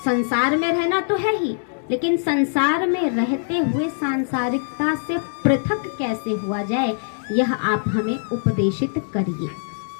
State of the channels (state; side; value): silent; right; digital silence